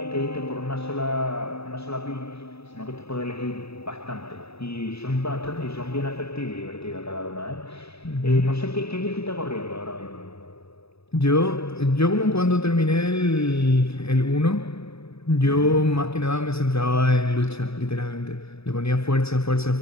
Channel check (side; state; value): right; late; 0.78 ms